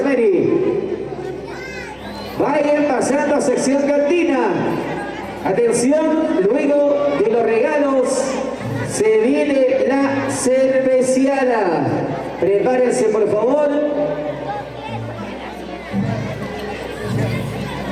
Vayan pasando a sección cantina. Atención, luego de los regalos se viene la cerveciada. Prepárense por favor.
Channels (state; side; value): identical; both; correlation 1.00